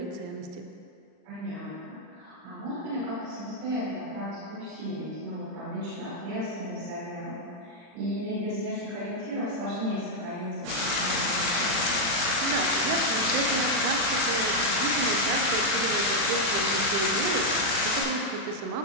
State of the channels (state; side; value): late; left; 40 ms